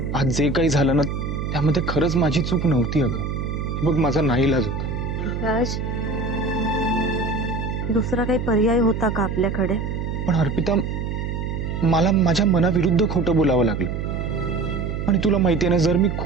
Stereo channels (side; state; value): right; noise; hum, 3 dB below the sound